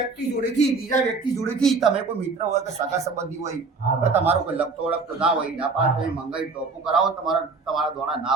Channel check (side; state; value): left; quieter; 4.3 dB